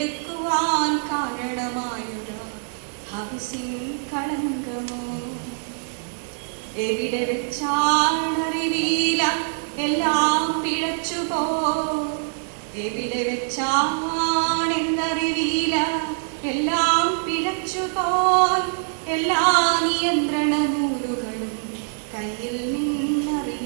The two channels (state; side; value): silent; left; 63 dB below the other